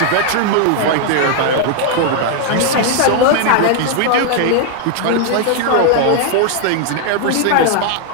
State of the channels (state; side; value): different; both; correlation 0.00